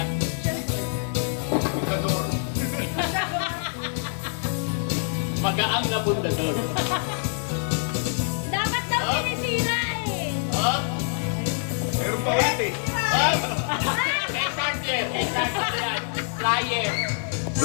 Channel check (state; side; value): silent; right; 57 dB below the other